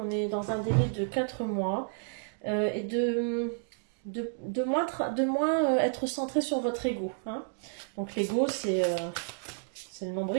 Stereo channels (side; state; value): left; silent; digital silence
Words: On est dans un délai de 4 mois et de moins être centré sur votre ego. Hein. Donc l'ego, c'est le